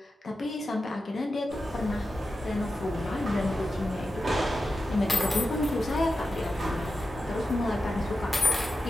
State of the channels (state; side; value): normal; both; correlation 0.91